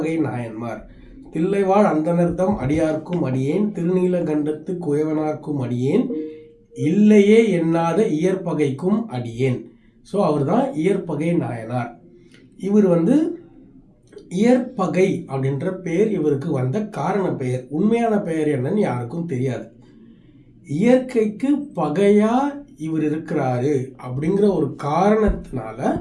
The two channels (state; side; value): identical; both; correlation 1.00